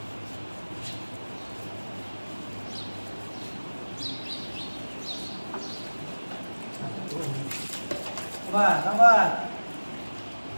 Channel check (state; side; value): inverted; both; correlation -1.00